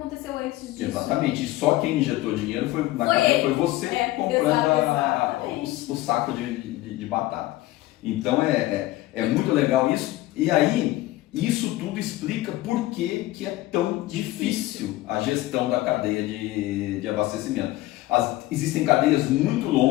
antes disso. Exatamente. E só quem injetou dinheiro foi você comprando o saco de batata. Então é muito legal isso. E aí, isso tudo explica por que é tão difícil a gestão da cadeia de abastecimento. Existem cadeias muito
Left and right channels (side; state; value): right; quieter; 17.1 dB